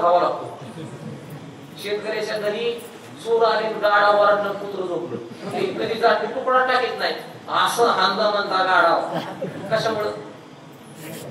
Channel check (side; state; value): both; identical; correlation 1.00